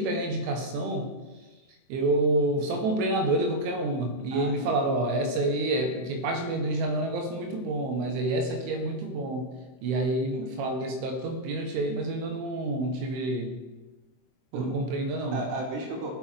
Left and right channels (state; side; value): late; left; 23 ms